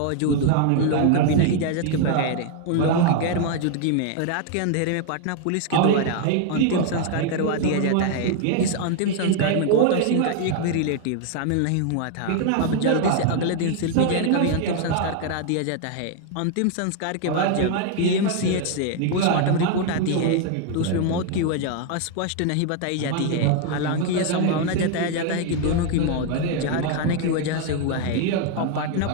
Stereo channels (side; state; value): both; different; correlation 0.00